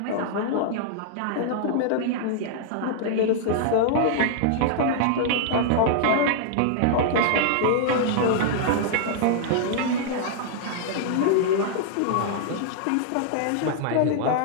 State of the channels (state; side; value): different; both; correlation -0.01